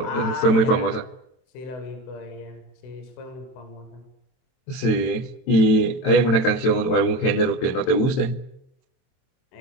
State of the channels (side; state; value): right; late; 23 ms